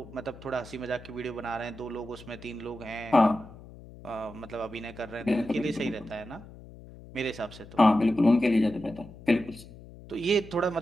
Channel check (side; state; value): left; noise; hum, 18 dB below the sound